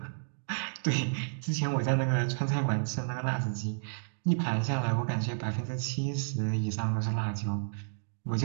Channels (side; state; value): left; silent; digital silence